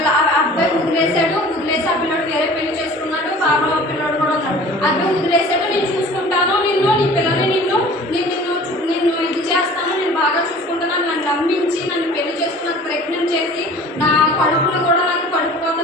అబ్బాయి వదిలేసి ఆ పిల్లడు వేరే పెళ్లి చేసుకున్నాడు. బాబా పిల్లడు కూడా ఉన్నాడు. అబ్బాయి వదిలేసాడు, నేను చూసుకుంటాను, నీ పిల్లల్ని నిన్ను ఇది చేస్తాను, నేను బాగా చూసుకుంటాను, నన్ను నమ్మించి నన్ను పెళ్లి చేసుకుని ప్రెగ్నెంట్ చేసి నా కడుపును కూడా నాకు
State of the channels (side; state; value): both; normal; correlation 0.45